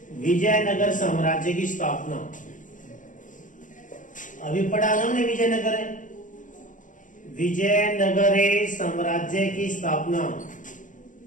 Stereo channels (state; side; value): late; right; 0.37 ms